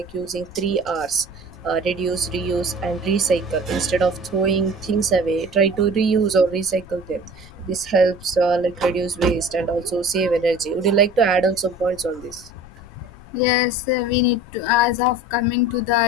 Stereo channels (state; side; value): noise; left; rumble, 20 dB below the sound